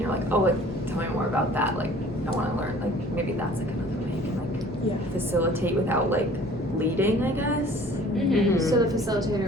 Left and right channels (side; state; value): both; normal; correlation 0.50